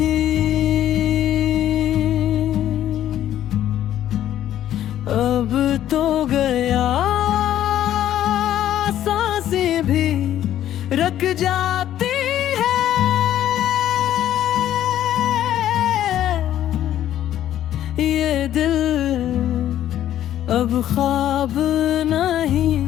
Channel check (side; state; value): right; quieter; 11.8 dB